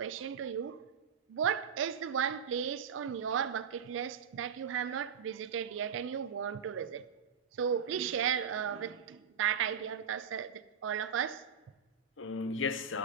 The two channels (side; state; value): left; quieter; 6.6 dB